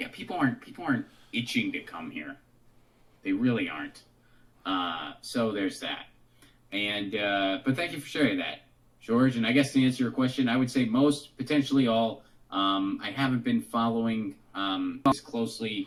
yeah, people aren't itching to come here. They really aren't. So there's that. And but thank you for sharing that, George. And I guess to answer your question, I would say most, potentially all. I haven't been following as closely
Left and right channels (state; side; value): identical; both; correlation 1.00